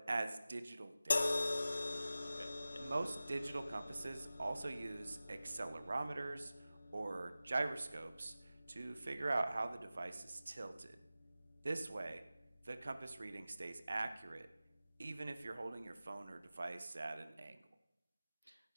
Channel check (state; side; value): inverted; both; correlation -0.95